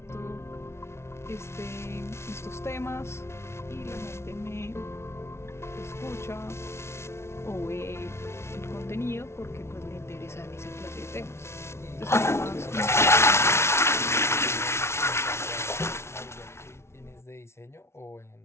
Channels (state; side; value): late; right; 0.13 ms